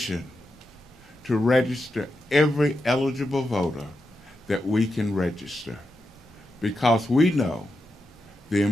to register every eligible voter that we can register, because we know the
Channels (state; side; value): normal; both; correlation 0.87